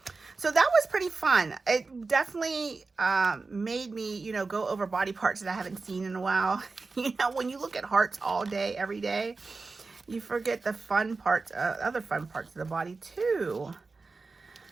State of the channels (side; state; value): left; quieter; 4.0 dB